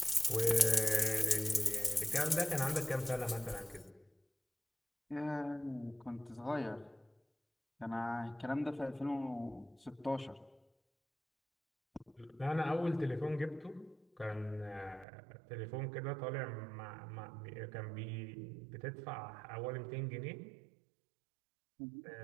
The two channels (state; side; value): drops out; left; at 15.1 s